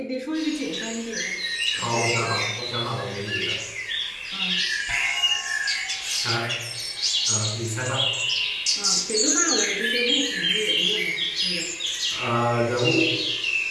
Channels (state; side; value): identical; both; correlation 1.00